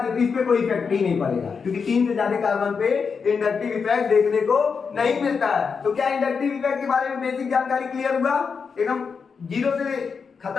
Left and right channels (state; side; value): quieter; right; 5.6 dB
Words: तो इस पे कोई इफेक्ट ही नहीं पड़ेगा, क्योंकि 3 से ज्यादा कार्बन पे इंडक्टिव इफेक्ट देखने को नहीं मिलता है। तो क्या इंडक्टिव इफेक्ट के बारे में बेसिक जानकारी क्लियर हुआ? एकदम जीरो से